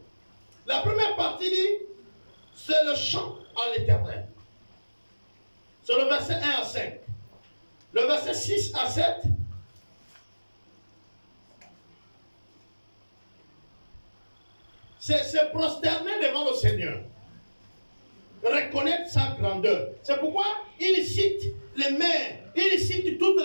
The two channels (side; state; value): both; inverted; correlation -1.00